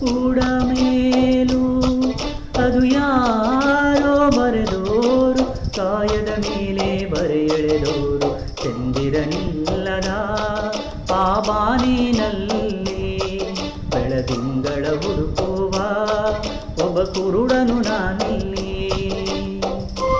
ಕೂಡ ಮೇಲು. ಅದು ಯಾರೋ ಬರೆದೋರು, ಕಾಯದ ಮೇಲೆ ಬರೆ ಎಳೆದೋರು. ಚಂದಿರನಿಲ್ಲದ ಆ ಬಾನಿನಲ್ಲಿ ಬೆಳದಿಂಗಳ ಹುಡುಕುವ ಒಬ್ಬ ಕುರುಡನು ನಾನಿಲ್ಲಿ.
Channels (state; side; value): identical; both; correlation 1.00